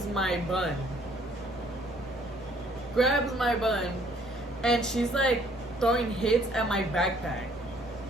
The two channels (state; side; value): normal; both; correlation 0.62